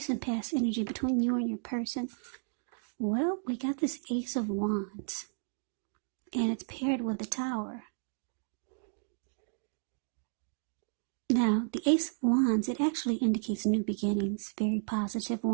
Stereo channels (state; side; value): silent; left; 56 dB below the other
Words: past energy between you and your person. Well, we got this Ace of Wands, and it's paired with the Tower. Now, the Ace of Wands, it actually indicates new beginnings, very positive